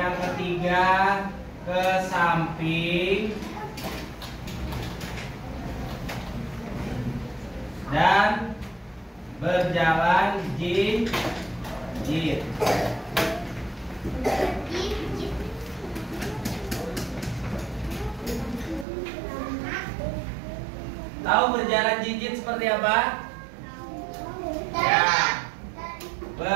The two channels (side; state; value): left; drops out; at 18.9 s